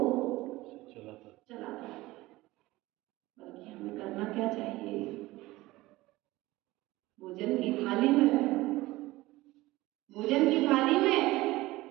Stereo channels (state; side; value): quieter; left; 18.8 dB